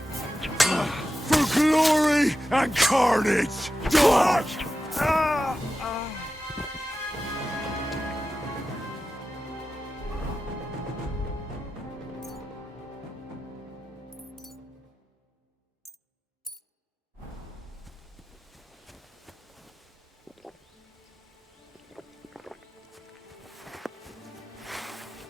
For glory and carnage! Dodge!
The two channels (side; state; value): both; normal; correlation 0.92